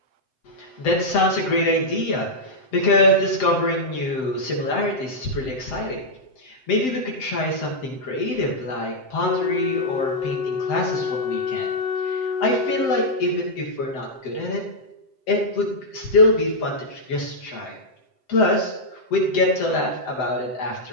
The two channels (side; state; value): right; late; 7.7 ms